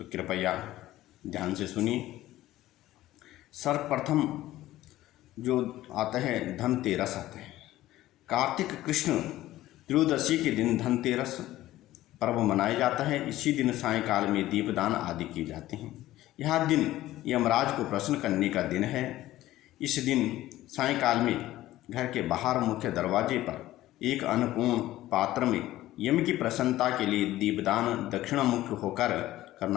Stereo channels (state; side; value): quieter; right; 15.3 dB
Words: कृपया ध्यान से सुनिए। सर्वप्रथम जो आता है धनतेरस आता है। कार्तिक कृष्ण त्रयोदशी के दिन धनतेरस पर्व मनाया जाता है। इसी दिन सायंकाल में दीपदान आदि किए जाते हैं। यह दिन यमराज को प्रसन्न करने का दिन है। इस दिन सायंकाल में घर के बाहर मुख्य दरवाजे पर एक अन्नपूर्ण पात्र में यम की प्रसन्नता के लिए दीपदान दक्षिणामुख होकर